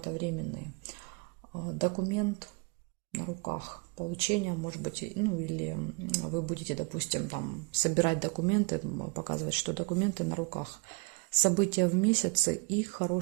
временные. Документ на руках, получение, может быть, ну, или вы будете, допустим, там собирать документы, показывать, что документы на руках. События в месяце и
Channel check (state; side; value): quieter; left; 31.0 dB